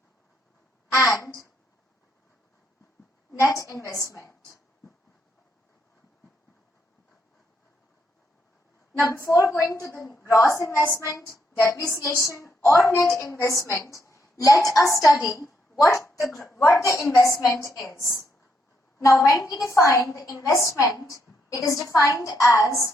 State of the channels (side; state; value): both; normal; correlation 0.77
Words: and net investment. Now, before going to the gross investment, depreciation, or net investment, let us study what the investment is. Now, when we define the investment, it is defined